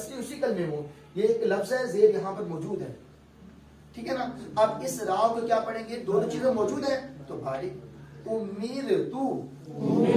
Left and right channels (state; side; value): identical; both; correlation 1.00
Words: اسی کلمے میں ہو. یہ ایک لفظ ہے، زیر یہاں پر موجود ہے. ٹھیک ہے نا. اب اس را کو کیا پڑھیں گے؟ دونوں چیزیں موجود ہیں تو باریک. امیر تو،